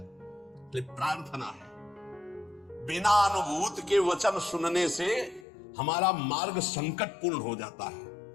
प्रार्थना है, बिना अनुभूत के वचन सुनने से हमारा मार्ग संकटपूर्ण हो जाता है।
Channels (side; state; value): right; drops out; at 5.5 s